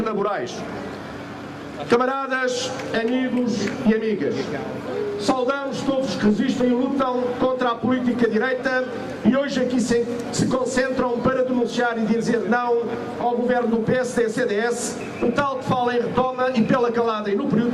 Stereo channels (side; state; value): both; identical; correlation 1.00